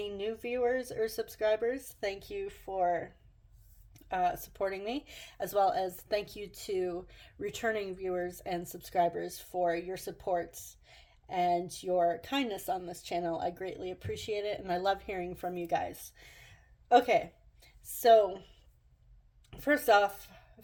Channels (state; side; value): identical; both; correlation 1.00